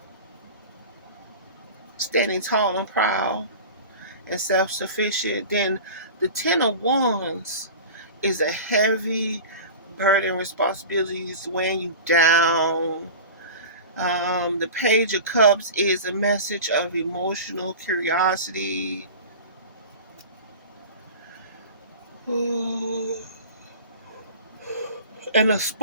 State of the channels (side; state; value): both; inverted; correlation -0.35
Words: standing tall and proud and self-sufficient. Then the Ten of Wands is a heavy burden, responsibilities weighing you down. The Page of Cups is a message of emotional curiosity. Ooh, and a